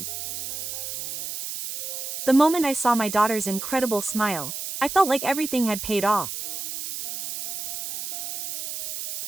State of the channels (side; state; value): right; noise; hiss, 6 dB below the sound